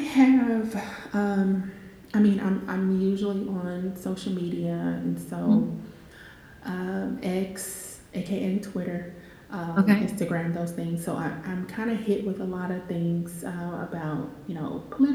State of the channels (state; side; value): identical; both; correlation 1.00